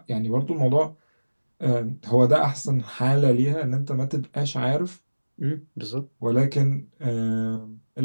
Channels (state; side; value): inverted; both; correlation -1.00